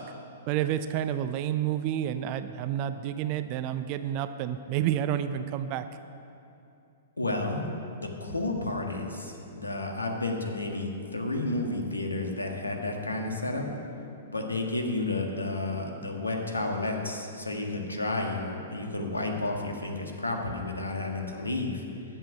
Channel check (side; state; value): both; inverted; correlation -0.33